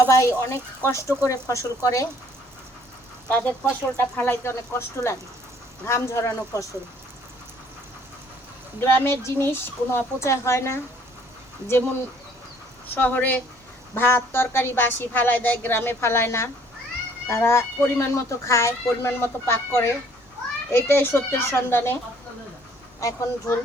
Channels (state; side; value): normal; both; correlation 0.60